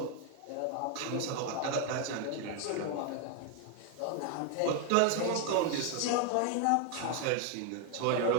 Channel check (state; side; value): different; both; correlation 0.01